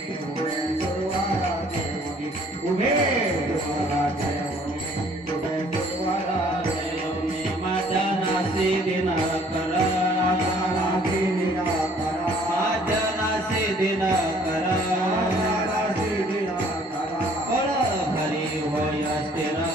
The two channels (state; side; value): normal; both; correlation 0.58